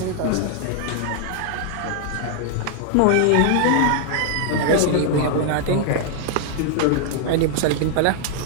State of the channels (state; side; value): different; both; correlation 0.00